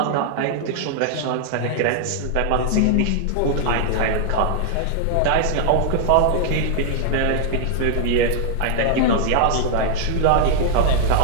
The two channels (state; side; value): different; both; correlation 0.00